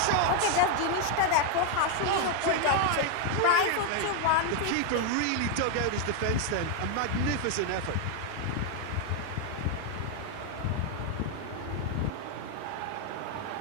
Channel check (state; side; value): different; both; correlation 0.01